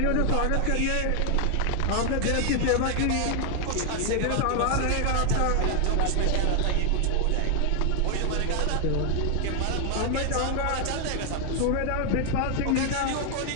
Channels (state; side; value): different; both; correlation 0.00